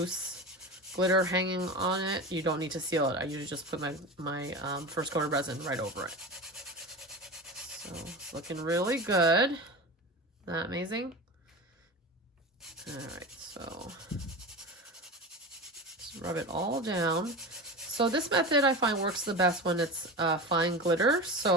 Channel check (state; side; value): normal; both; correlation 0.28